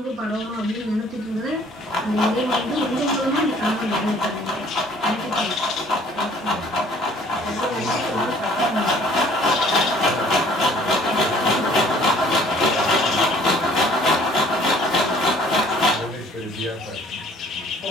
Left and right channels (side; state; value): both; normal; correlation 0.56